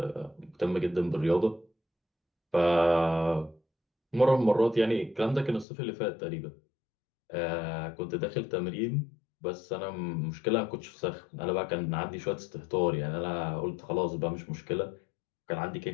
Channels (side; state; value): right; drops out; at 5.7 s